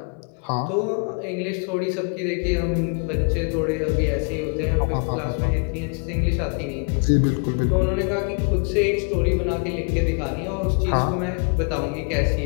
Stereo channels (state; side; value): quieter; right; 39.5 dB